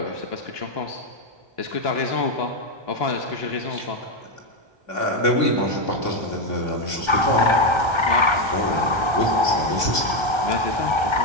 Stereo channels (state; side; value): late; left; 1.2 ms